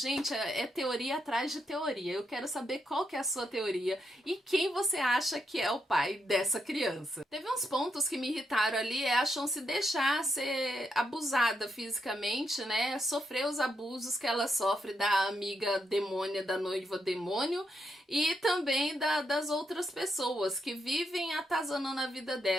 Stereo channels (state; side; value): normal; both; correlation 0.81